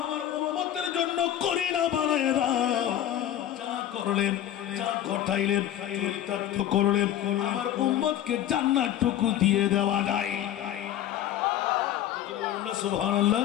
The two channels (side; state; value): right; quieter; 11.7 dB